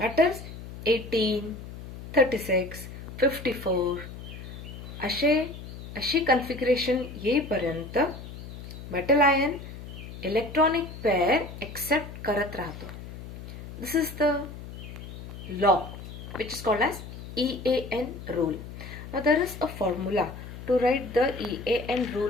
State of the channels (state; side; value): noise; left; hum, 12 dB below the sound